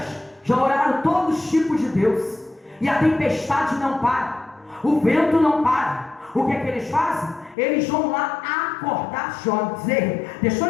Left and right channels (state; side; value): drops out; right; at 7.6 s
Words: já oraram todos os tipos de Deus, e a tempestade não para, o vento não para. O que é que eles fazem? Eles vão lá acordar Jonas. Deixa